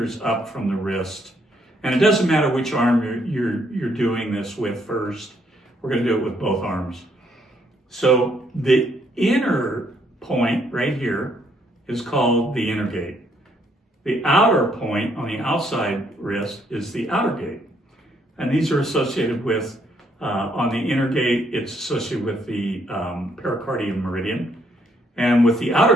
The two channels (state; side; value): normal; both; correlation 0.71